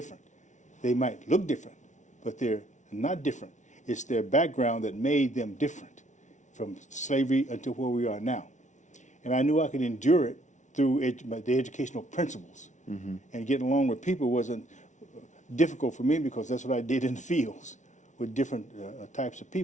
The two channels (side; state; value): right; late; 0.36 ms